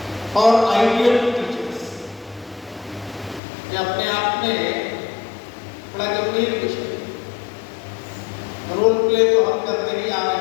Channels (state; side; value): drops out; right; at 3.4 s